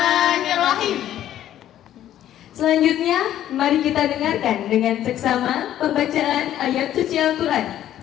Selanjutnya, mari kita dengarkan dengan seksama pembacaan ayat suci Al-Quran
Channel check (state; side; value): quieter; right; 11.9 dB